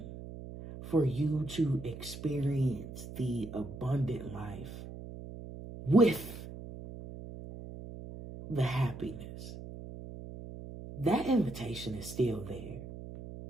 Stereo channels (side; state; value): right; noise; hum, 12 dB below the sound